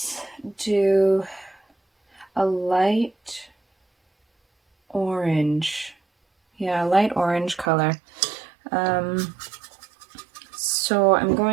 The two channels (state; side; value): drops out; left; at 7.7 s